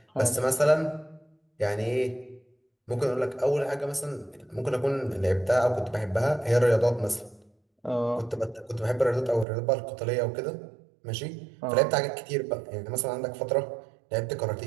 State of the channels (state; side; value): drops out; left; at 9.5 s